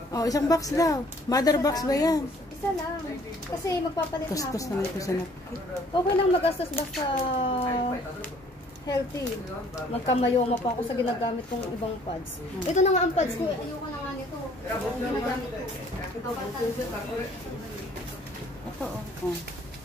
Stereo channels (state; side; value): normal; both; correlation 0.58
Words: Oh, isang box daw. Mother box ba yan? Isa lang. Kasi magpapalit na ako. Kustos naman ito sa napkin. Okay lang mag-gastos basta healthy. Magkamayoma pa ako sa ginagamit kong ibang pads. Ito na nga ang pads ko. Ayoko na nga nito. Ang ginagamit ko. Ito, oh.